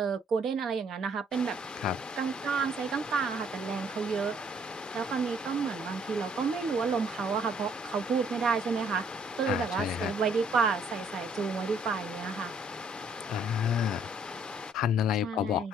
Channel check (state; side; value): normal; both; correlation 0.64